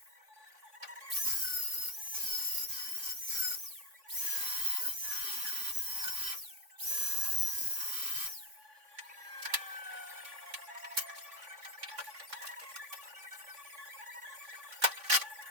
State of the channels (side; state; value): left; late; 3.5 ms